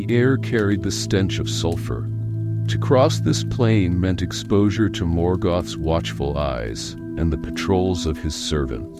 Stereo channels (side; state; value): both; identical; correlation 1.00